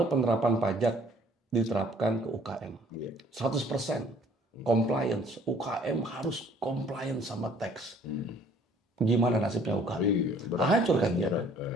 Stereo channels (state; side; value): normal; both; correlation 0.57